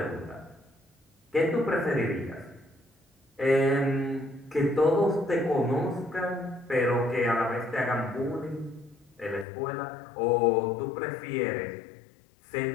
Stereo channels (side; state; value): right; drops out; at 9.5 s